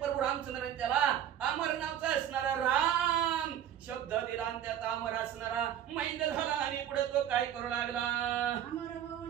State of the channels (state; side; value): quieter; left; 10.3 dB